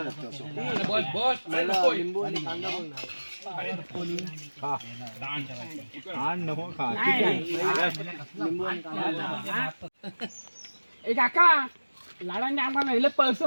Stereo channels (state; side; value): inverted; both; correlation -1.00